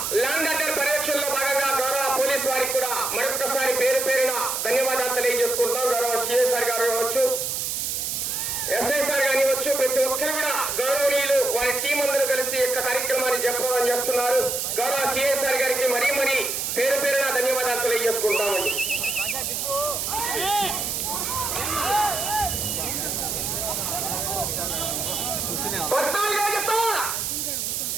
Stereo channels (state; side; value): noise; right; hiss, 1 dB below the sound